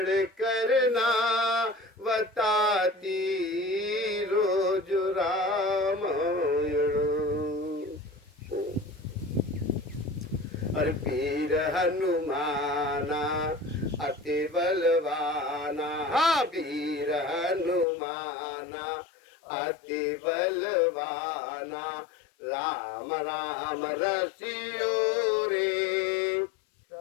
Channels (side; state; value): right; drops out; at 17.9 s